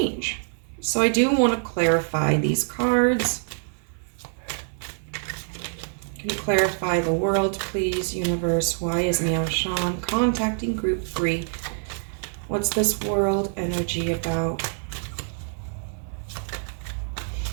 So I do want to clarify these cards. Can you clarify the World, please, universe? Why is Meow Shan contacting group 3? What's this World energy about?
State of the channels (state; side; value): silent; left; 61 dB below the other